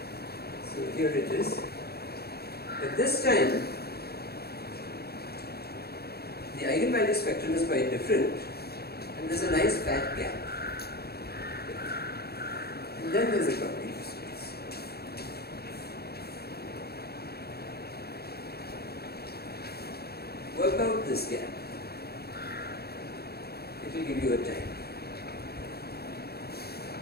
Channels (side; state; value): right; late; 0.46 ms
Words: So here it is. At this time, the eigenvalue spectrum is quite different, and there's a nice fat gap. And then there's a property of space. Work out this gap. It will give you a time.